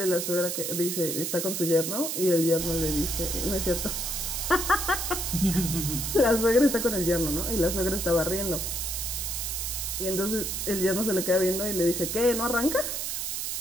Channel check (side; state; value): right; noise; hiss, 2 dB below the sound